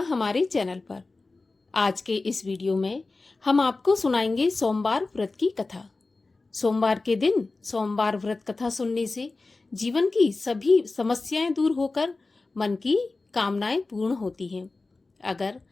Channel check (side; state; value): right; quieter; 3.5 dB